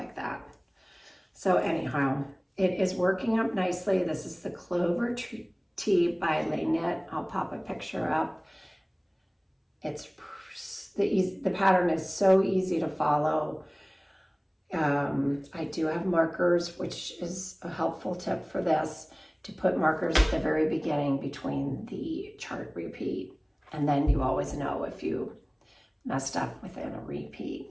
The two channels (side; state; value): both; identical; correlation 1.00